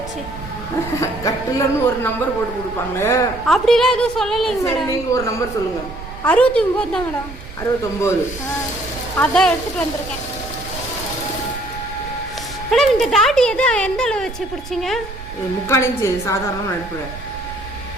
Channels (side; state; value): right; noise; rumble, 13 dB below the sound